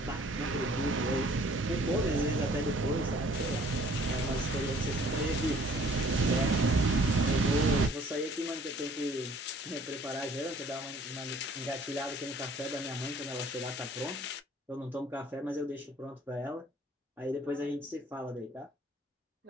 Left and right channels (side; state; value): both; normal; correlation 0.55